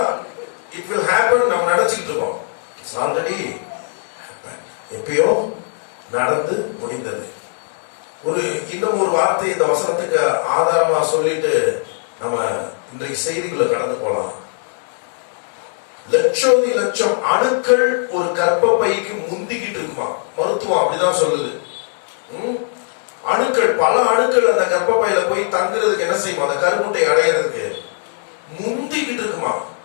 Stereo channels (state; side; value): silent; right; digital silence